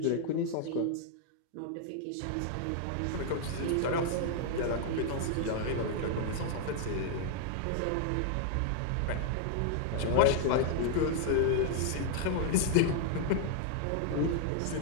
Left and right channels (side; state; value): both; different; correlation 0.00